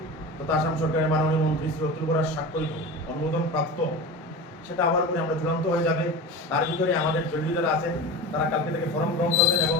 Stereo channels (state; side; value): normal; both; correlation 0.29